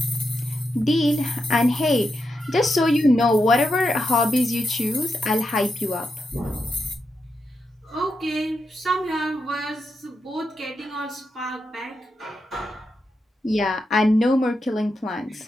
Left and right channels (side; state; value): both; normal; correlation 0.86